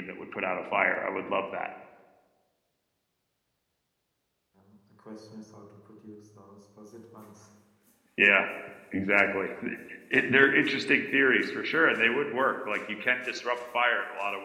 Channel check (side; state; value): both; identical; correlation 1.00